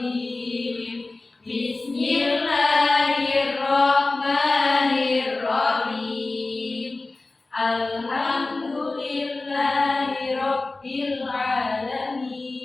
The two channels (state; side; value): quieter; right; 3.3 dB